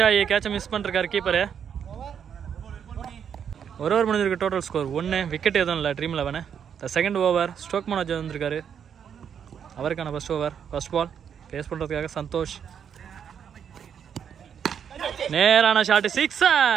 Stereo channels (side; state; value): left; quieter; 8.0 dB